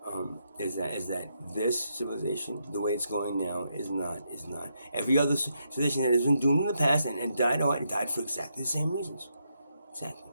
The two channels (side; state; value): both; inverted; correlation -0.80